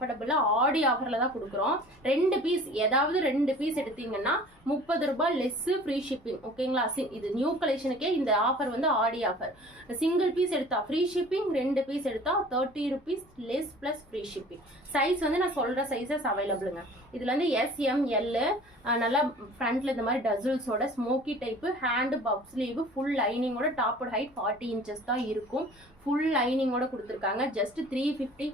ஆடி ஆஃபரில் தான் கொடுக்குறோம். 2 பீஸ் ஏதாவது 2 பீஸ் எடுத்தீங்கன்னா 30 ரூபாய் லெஸ் ஃப்ரீ ஷிப்பிங். ஓகேங்களா? இது நியூ கலெக்ஷனுக்கே இந்த ஆஃபர் வந்து ஆடி ஆஃபர். சிங்கிள் பீஸ் எடுத்தா ஃப்ரீ ஷிப்பிங், 2 பீஸ் எடுத்தா 30 rupees less plus free shipping. Size வந்து நான் சொல்ற சைஸஸ் அவைலபிளுங்க. இதுல வந்து SML நல்லா ஃப்ரண்ட்ல இந்த மாதிரி டசல்ஸோட smoky type, hand puff sleeve, full லைனிங்கோட, டாப் ஹைட் 40 inches தான் இருக்கும். ஃபுல் லைனிங்கோட கொடுத்துருக்காங்க. Just 350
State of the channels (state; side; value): normal; both; correlation 0.46